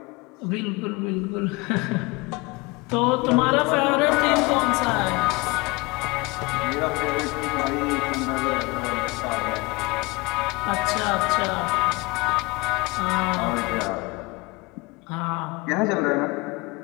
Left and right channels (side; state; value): right; quieter; 24.6 dB